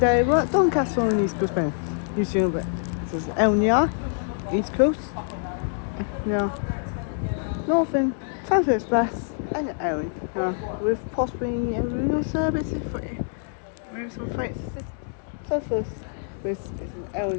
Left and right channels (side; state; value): right; silent; 61 dB below the other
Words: we're at Doncaster on the East Coast Train. You see over it. This is Elnia, East Coast. Yeah. Northern, South Express, and Erin. With possibly a renal service if maybe some freight. This